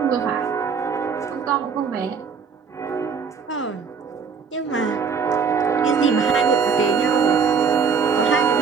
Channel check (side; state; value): left; quieter; 5.9 dB